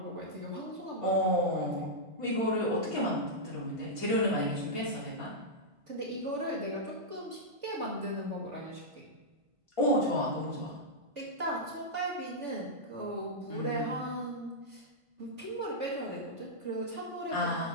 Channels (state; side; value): late; left; 1.5 ms